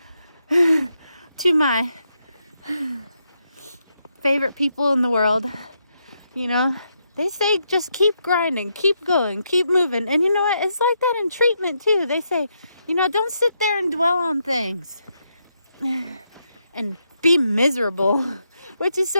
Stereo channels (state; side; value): inverted; both; correlation -0.80